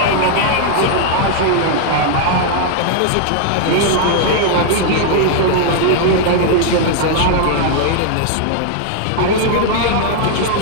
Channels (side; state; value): both; different; correlation 0.00